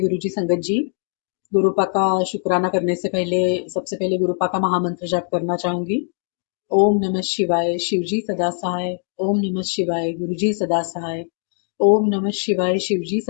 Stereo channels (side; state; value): right; silent; 65 dB below the other